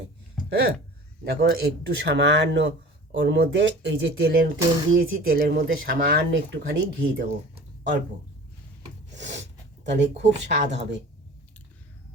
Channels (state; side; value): normal; both; correlation 0.41